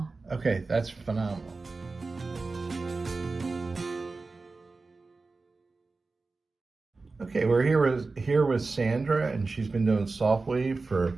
Okay, that's phenomenal. Okay, we're here with Sandra, and she's been doing Softwave for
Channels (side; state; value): left; quieter; 3.8 dB